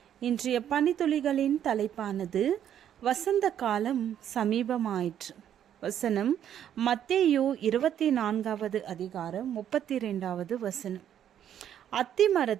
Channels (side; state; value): left; quieter; 10.0 dB